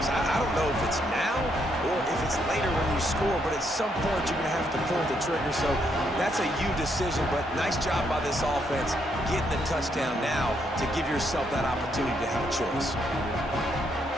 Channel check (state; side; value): normal; both; correlation 0.75